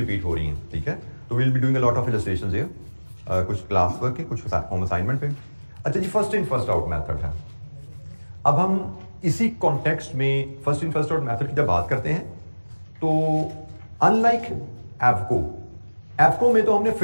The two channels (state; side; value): inverted; both; correlation -1.00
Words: हो रही हैं। ठीक है, तो will be doing a lot of illustrations here, कुछ क्लास वर्क के, कुछ होम असाइनमेंट पे। अच्छा जी, first in first out method है। अब हम इसी कॉन्टेक्स्ट में first in first out method की जब बात करते हैं, तो अनलाइक एफको में तो हमने